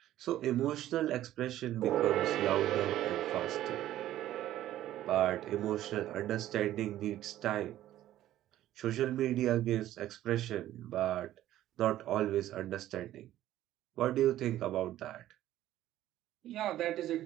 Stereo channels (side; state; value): left; quieter; 13.4 dB